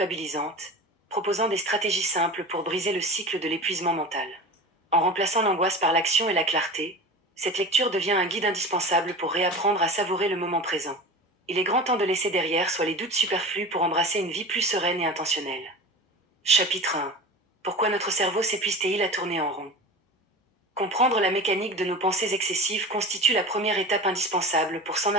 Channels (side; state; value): both; normal; correlation 0.33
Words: proposant des stratégies simples pour briser le cycle de l'épuisement mental. En remplaçant l'angoisse par l'action et la clarté, cette lecture devient un guide indispensable pour réapprendre à savourer le moment présent. Il est grand temps de laisser derrière soit les doutes superflus pour embrasser une vie plus sereine et intentionnelle. Chapitre 1. Pourquoi notre cerveau s'épuise-t-il à tourner en rond? Comprendre la mécanique de nos pensées excessives constitue la première étape indispensable pour s'en